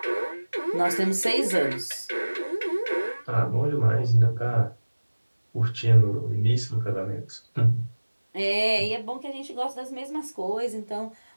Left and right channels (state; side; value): inverted; both; correlation -1.00